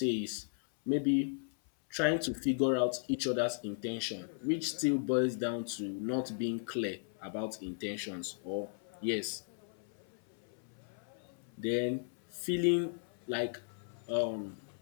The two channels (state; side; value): silent; right; 54 dB below the other